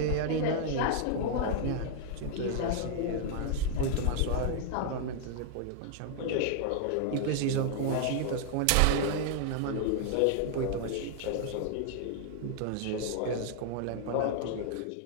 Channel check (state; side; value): different; both; correlation -0.01